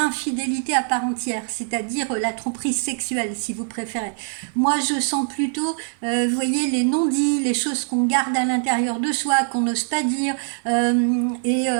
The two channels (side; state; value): left; silent; 64 dB below the other